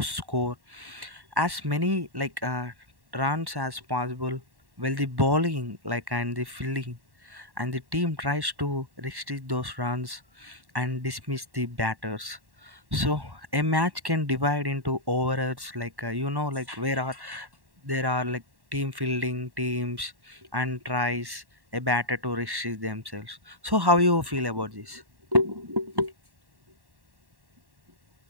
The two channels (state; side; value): late; left; 1.1 ms